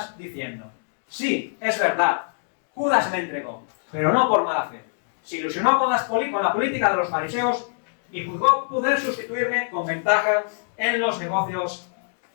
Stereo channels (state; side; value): silent; right; digital silence